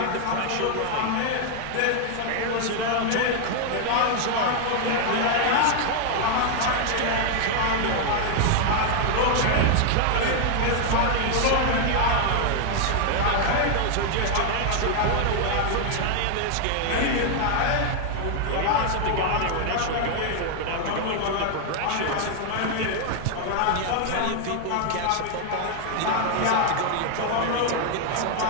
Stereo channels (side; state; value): both; different; correlation 0.00